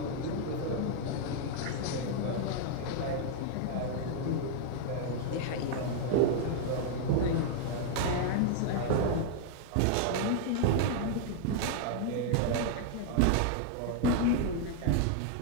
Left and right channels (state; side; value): different; both; correlation 0.00